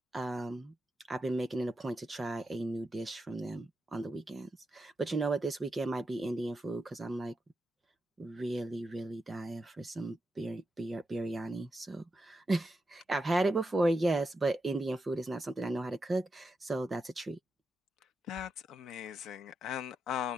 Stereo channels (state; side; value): normal; both; correlation 0.87